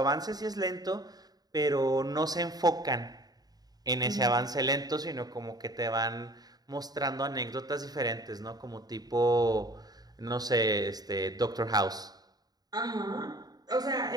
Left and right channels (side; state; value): left; late; 0.19 ms